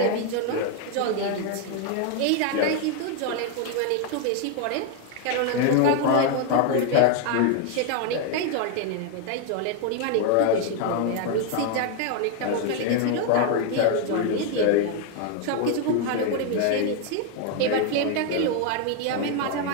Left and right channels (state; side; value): different; both; correlation 0.01